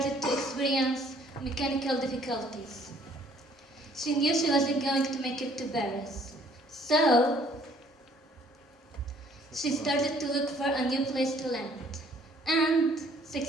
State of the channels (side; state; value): both; normal; correlation 0.60